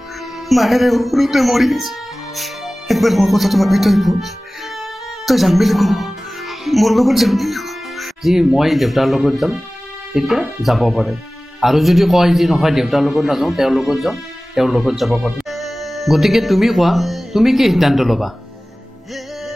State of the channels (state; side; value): normal; both; correlation 0.98